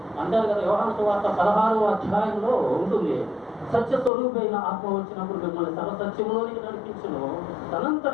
అంటారు కదా, యోహాను సువార్త 16వ అధ్యాయంలో ఉంటుంది, సత్య స్వరూపైన ఆత్మ వచ్చినప్పుడు మిమ్మల్ని సర్వసత్యంలోనికి నడిపించును,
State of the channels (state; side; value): drops out; right; at 4.1 s